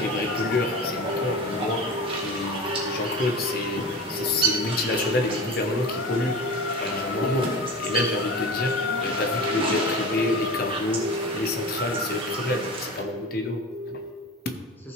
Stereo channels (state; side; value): normal; both; correlation 0.32